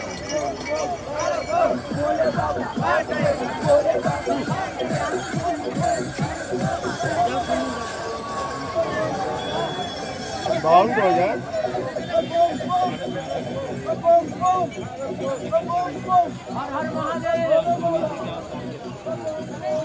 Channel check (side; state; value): both; identical; correlation 1.00